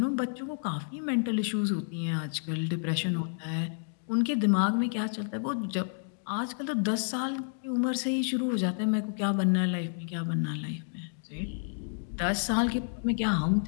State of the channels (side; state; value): right; silent; digital silence